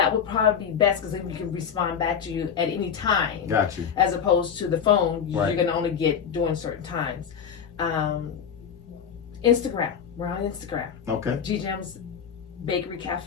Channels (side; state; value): right; quieter; 7.4 dB